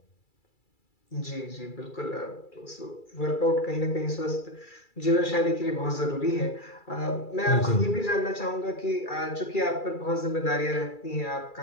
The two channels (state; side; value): late; right; 2.3 ms